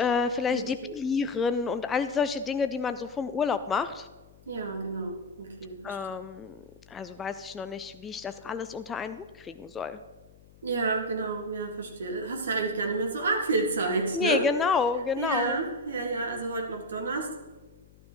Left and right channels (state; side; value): noise; left; hum, 25 dB below the sound